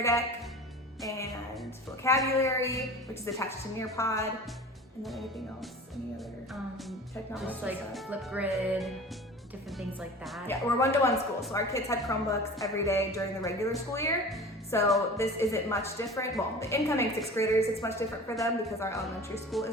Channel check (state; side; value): normal; both; correlation 0.38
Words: Deck, and Vocabulary, which is attached to Nearpod, and then anything else, any other technology Just like stuff? Flipgrid, different things like that. Yeah, we're one-to-one school, so our kids had Chromebooks every day during the regular school year. So this isn't much different. Well, the incoming 6th graders, it's much different for them because our elementary school